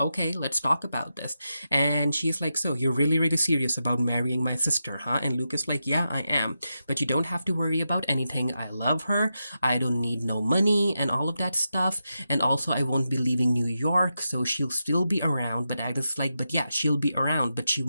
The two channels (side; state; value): both; inverted; correlation -0.88